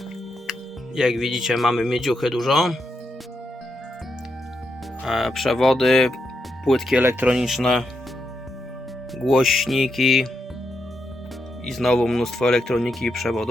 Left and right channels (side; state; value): both; normal; correlation 0.83